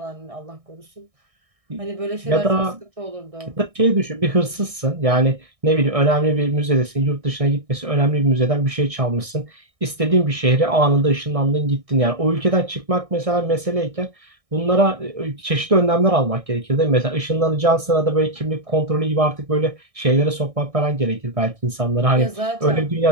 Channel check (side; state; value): left; late; 1.6 ms